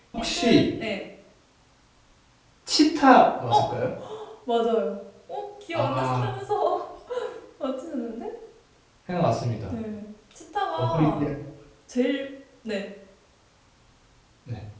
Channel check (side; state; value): both; identical; correlation 1.00